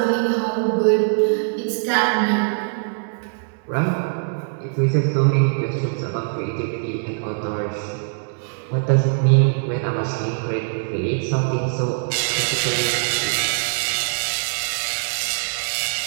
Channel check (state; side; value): silent; left; 64 dB below the other